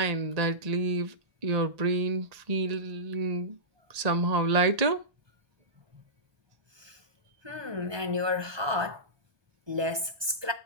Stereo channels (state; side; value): late; left; 1.2 ms